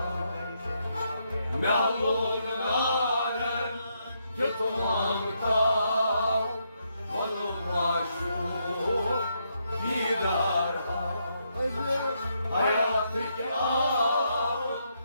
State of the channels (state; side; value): inverted; both; correlation -0.78